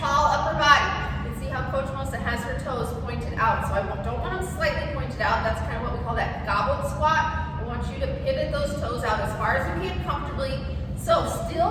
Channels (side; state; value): both; identical; correlation 1.00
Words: upper body. You can see how Coach Melissa has her toes pointed out. So I don't want them slightly pointed out. That's kind of what we call that goblet squat.